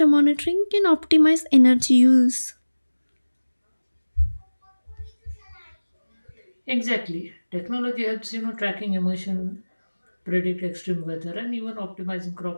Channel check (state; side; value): inverted; both; correlation -1.00